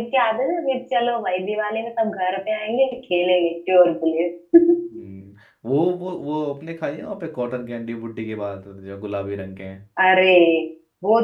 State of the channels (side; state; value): both; identical; correlation 1.00